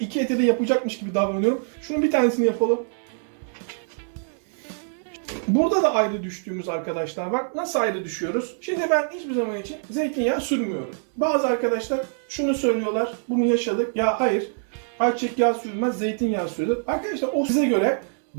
eti de yapacakmış gibi davranıyorum. Şunun bir tanesini yapalım. Burada da ayrı düştüğümüz arkadaşlar var. Nasıl ayrı düşüyoruz? Şimdi ben hiçbir zaman için zeytinyağı sürmüyorum. Bazı arkadaşlar şunu söylüyorlar. Bunu yaşadık. Ya hayır. Ayçiçek yağı sürülmez, zeytinyağı sürülür. Arkadaşlar o size göre.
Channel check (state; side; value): silent; left; digital silence